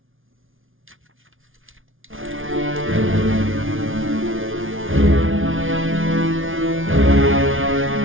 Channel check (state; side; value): late; left; 0.58 ms